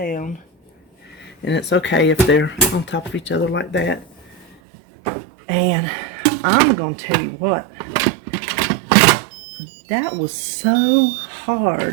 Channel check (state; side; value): drops out; left; at 4.5 s